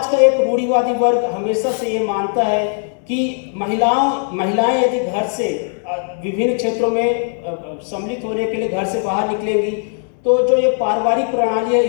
का एक रूढ़िवादी वर्ग हमेशा से ये मानता है कि महिलाएं यदि घर से विभिन्न क्षेत्रों में सम्मिलित होने के लिए घर से बाहर निकलेंगी तो जो ये पारिवारिक प्रणाली है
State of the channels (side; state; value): right; silent; 60 dB below the other